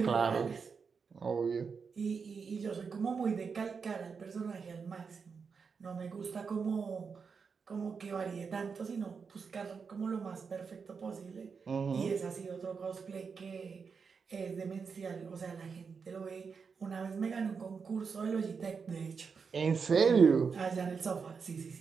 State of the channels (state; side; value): quieter; left; 5.6 dB